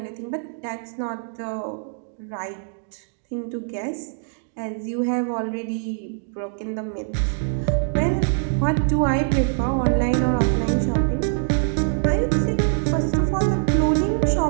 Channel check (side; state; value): left; silent; digital silence